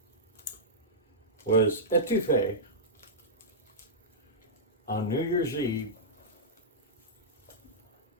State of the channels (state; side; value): normal; both; correlation -0.14